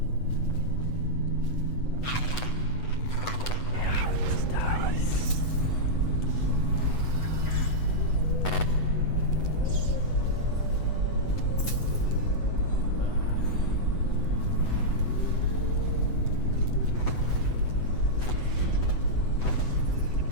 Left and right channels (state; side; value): late; right; 8.0 ms